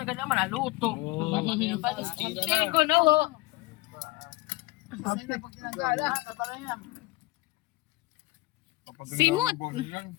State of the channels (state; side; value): quieter; right; 21.8 dB